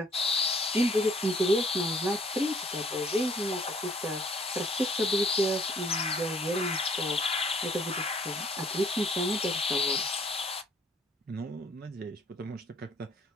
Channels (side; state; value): both; normal; correlation 0.60